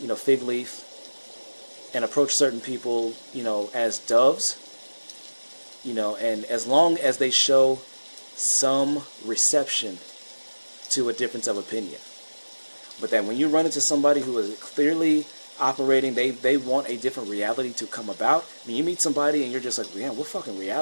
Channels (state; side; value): inverted; both; correlation -1.00